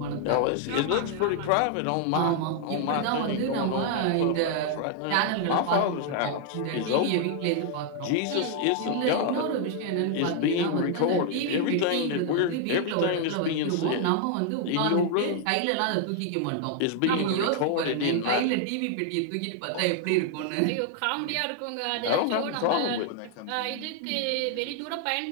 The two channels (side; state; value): both; different; correlation 0.00